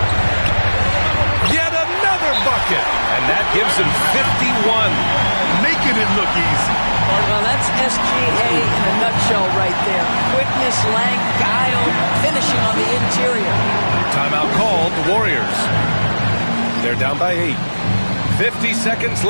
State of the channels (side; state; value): both; inverted; correlation -1.00